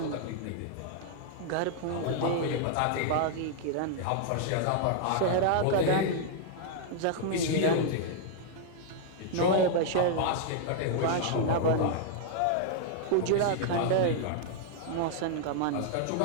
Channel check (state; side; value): different; both; correlation -0.01